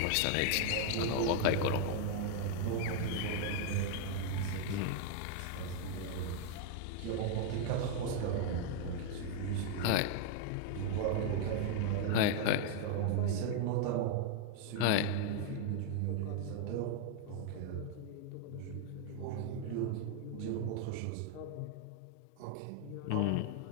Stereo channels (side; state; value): both; different; correlation 0.00